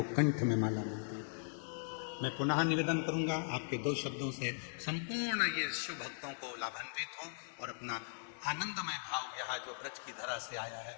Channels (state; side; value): silent; right; 52 dB below the other